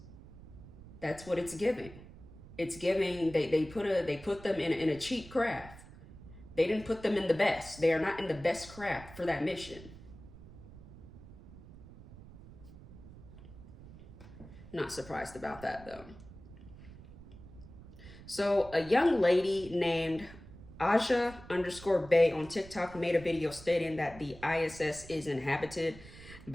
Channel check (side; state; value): right; noise; rumble, 17 dB below the sound